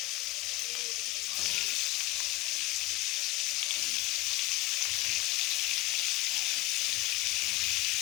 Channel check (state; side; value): quieter; right; 21.2 dB